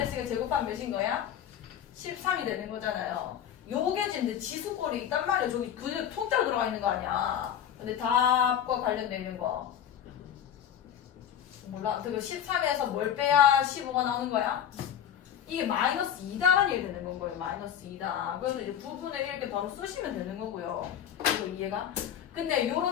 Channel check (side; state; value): right; quieter; 9.5 dB